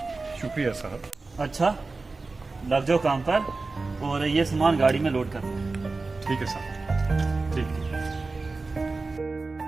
शुक्रिया साहब। अच्छा लग जाओ काम पर और ये सामान गाड़ी में लोड कर दो। ठीक है साहब, ठीक है।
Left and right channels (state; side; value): quieter; left; 3.7 dB